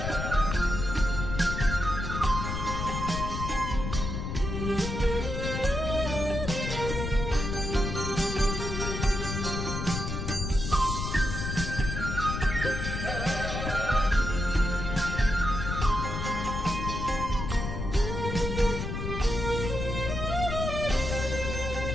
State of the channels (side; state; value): left; noise; rumble, 4 dB below the sound